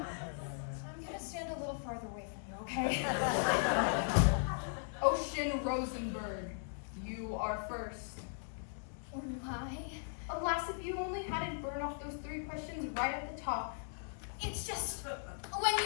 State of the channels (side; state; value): right; silent; digital silence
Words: I'm gonna stand a little farther away from you, okay? Ocean Rosenberg, you are first. Why? Alas, if you only hadn't burned off those 3 questions right at the top. It's just, when